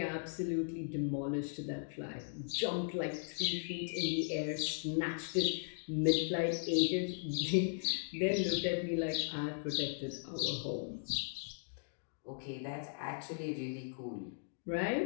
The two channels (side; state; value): right; silent; digital silence